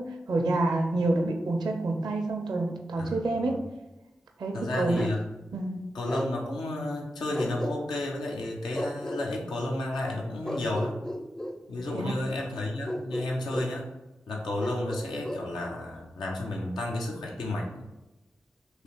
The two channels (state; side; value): normal; both; correlation 0.87